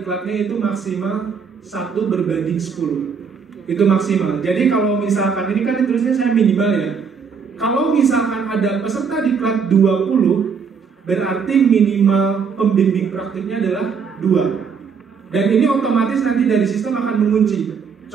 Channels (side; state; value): left; quieter; 6.0 dB